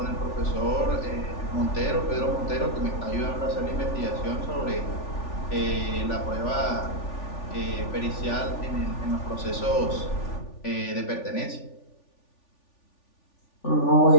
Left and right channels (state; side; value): late; right; 3.4 ms